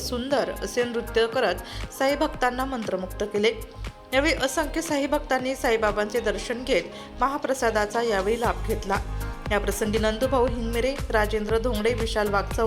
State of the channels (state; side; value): identical; both; correlation 1.00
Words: असे नृत्य करत साई भक्तांना मंत्रमुग्ध केले। यावेळी असंख्य साई भक्तांनी साईबाबांचे दर्शन घेत महाप्रसादाचा यावेळी लाभ घेतला। या प्रसंगी नंदूभाऊ हिंगमिरे, राजेंद्र धोंगडे, विशाल